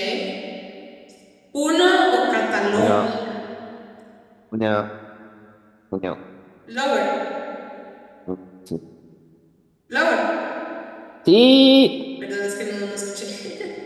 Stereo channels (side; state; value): both; identical; correlation 1.00